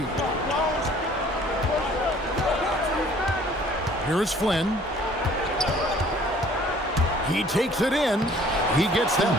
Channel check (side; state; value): both; normal; correlation 0.55